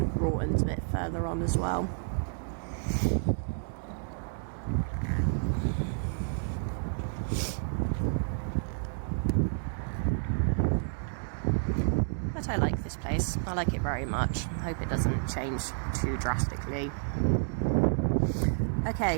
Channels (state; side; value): silent; left; digital silence